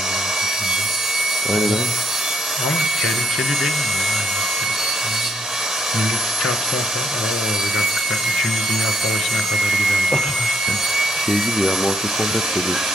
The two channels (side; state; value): both; normal; correlation 0.73